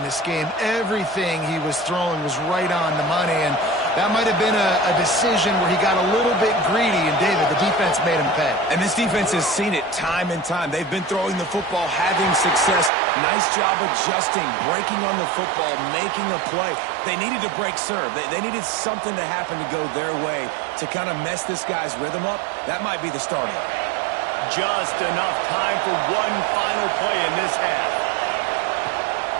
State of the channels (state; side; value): drops out; left; at 12.9 s